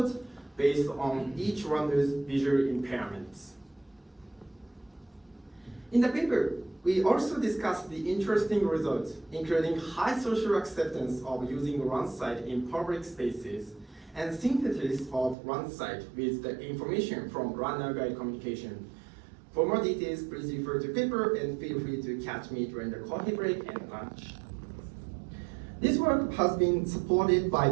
based on each runner's visual impairments. In the paper, we also discussed the interesting results, including high social acceptance of using RunSight in public spaces and synthesis of RunSight with the information from runner guide communication. For more details, please refer to paper and feel free to catch me during the coffee break and lunch. This work has been supported by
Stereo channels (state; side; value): drops out; left; at 15.4 s